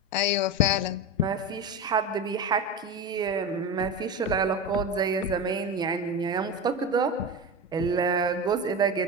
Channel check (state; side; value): normal; both; correlation 0.23